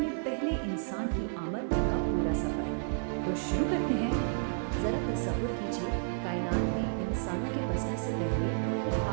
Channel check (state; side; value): silent; left; 56 dB below the other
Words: پہلے انسان کی آمد تک کا پورا سفر۔ تو شروع کرتے ہیں۔ ذرا تصور کیجیے، کائنات میں انسانوں کے بسنے سے پہلے